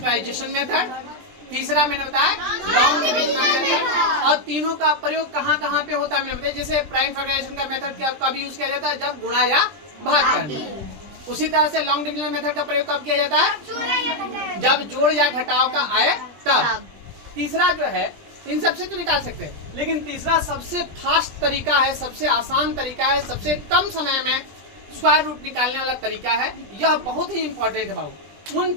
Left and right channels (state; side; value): late; left; 20 ms